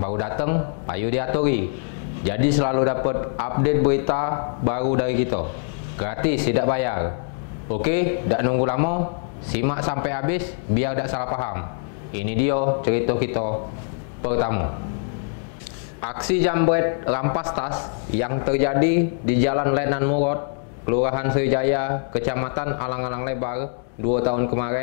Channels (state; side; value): silent; right; digital silence